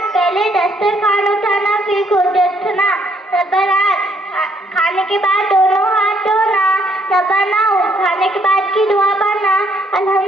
पहले दस्तरखान उठाना फिर खुद उठना। नंबर 8, खाने के बाद दोनों हाथ धोना। नंबर 9, खाने के बाद की दुआ पढ़ना।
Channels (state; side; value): normal; both; correlation 0.68